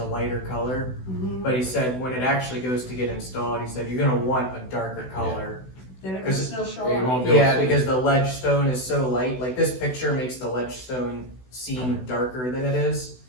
lighter color. Mhm. But he said when it actually goes to get installed, he said you're gonna want a darker color. Then it can 'cause still show Yeah, you up. won't be able to Yeah, see it. because the ledge stone is so light, like this picture makes the ledge stone seem darker than it is,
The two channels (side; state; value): right; late; 16 ms